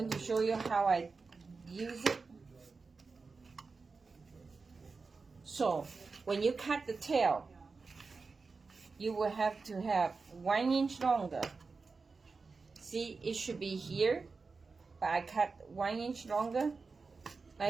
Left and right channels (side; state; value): left; quieter; 4.4 dB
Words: to show you how I use it. So when you cut the tail, you will have to have 1 inch longer. See, it should be here, but I cut 1 inch longer,